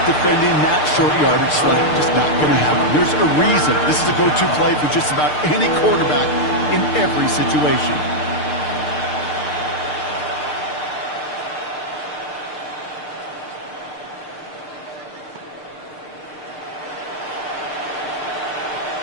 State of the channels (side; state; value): right; late; 6.6 ms